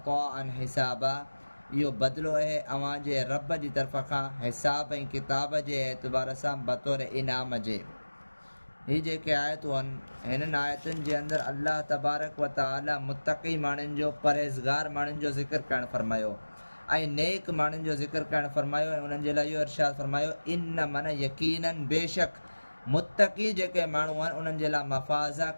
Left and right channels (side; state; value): both; inverted; correlation -1.00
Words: हिसाबा, इहो बदिलो आहे अव्हांजे रब जी तरफ़ खां हिसाब ऐं किताब जे एतबार सां बतौर इनाम जे। ही जेके आयतूं आहिनि, हिननि आयतुनि जे अंदरि अल्लाह तबारक व तआला मुत्तक़ी माण्हुनि जो, परहेज़गार माण्हुनि जो ज़िक्र करणु फरमायो ऐं नेक माण्हुनि जो ज़िक्र करणु फरमायो ऐं उन्हनि जे लाइ इहो इरशाद फरमायो, इन मन यकीनन बेशक मुत्तक़ी जेके माण्हू आहिनि उन्हनि जे लाइ मफ़ाज़ा